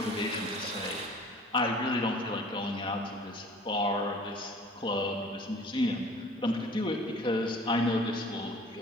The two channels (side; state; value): both; normal; correlation 0.48